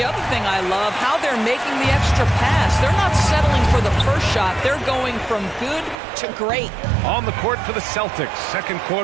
other thing I love, how they're making the extra pass. They're not settling for the first shot. They're going from good to great. On the court for the Celtics, second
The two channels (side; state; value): left; drops out; at 6.0 s